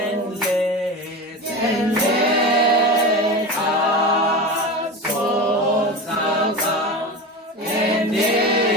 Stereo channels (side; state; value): both; normal; correlation 0.26